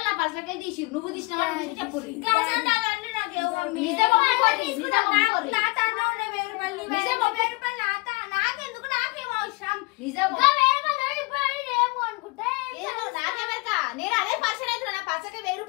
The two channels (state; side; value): quieter; right; 26.0 dB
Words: నా పర్సులకై తీసి నువ్వు తీసిన చెప్పు. నేను అదే పర్సన్ అయితే నా పర్సకే 1000